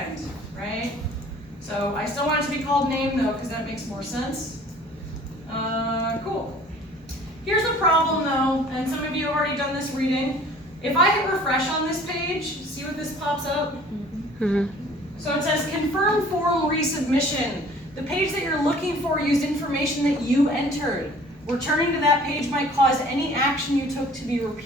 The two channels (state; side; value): normal; both; correlation 0.51